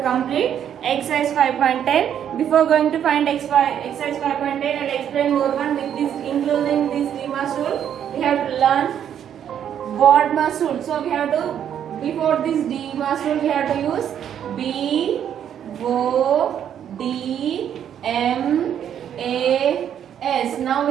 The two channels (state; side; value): quieter; left; 9.4 dB